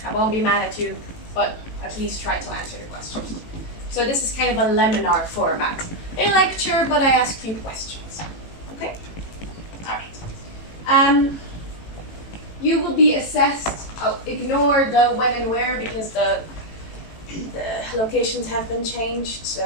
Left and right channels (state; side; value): late; right; 18 ms